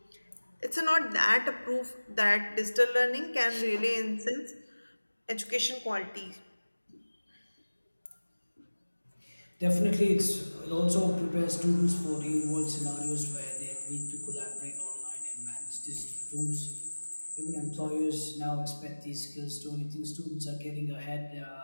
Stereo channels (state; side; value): inverted; both; correlation -1.00